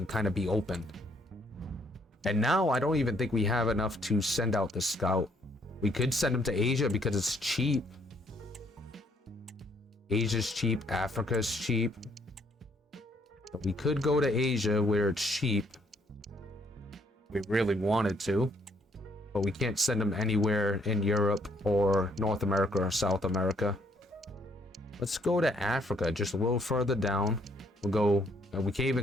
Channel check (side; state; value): both; normal; correlation 0.68